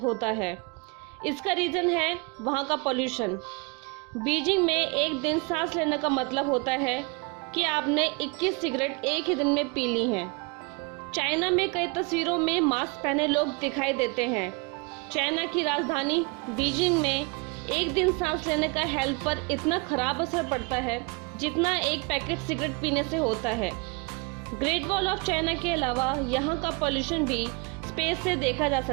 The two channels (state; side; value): quieter; left; 30.4 dB